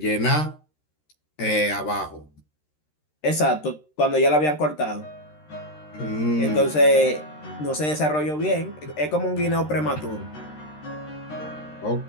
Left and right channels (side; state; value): right; late; 13 ms